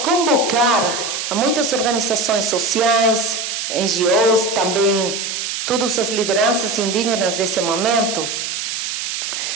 a muitas organizações sociais, NGOs, também todas as lideranças indígenas desse momento,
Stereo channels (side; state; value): right; noise; hiss, 4 dB below the sound